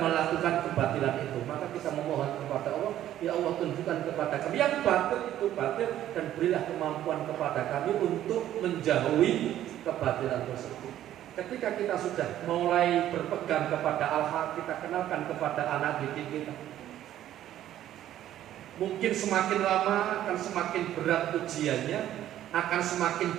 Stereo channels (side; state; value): left; quieter; 12.3 dB